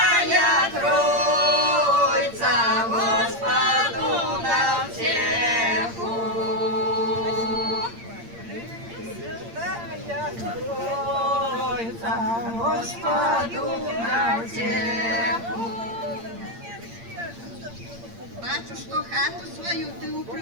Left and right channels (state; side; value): late; left; 8.7 ms